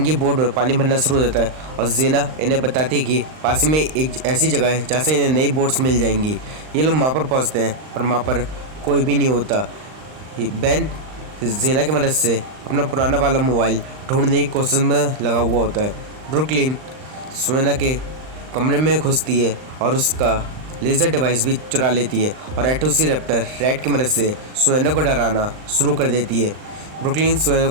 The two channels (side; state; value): left; late; 39 ms